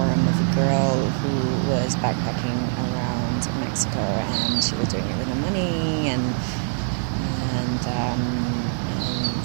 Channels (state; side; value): silent; left; digital silence